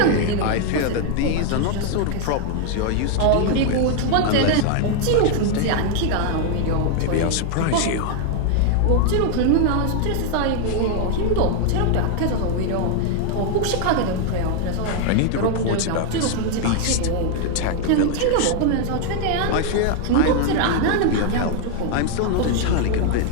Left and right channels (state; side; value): different; both; correlation 0.00